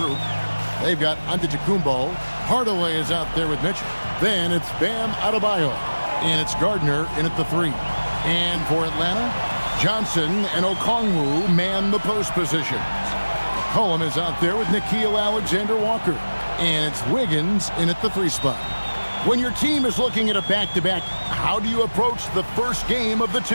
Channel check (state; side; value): inverted; both; correlation -1.00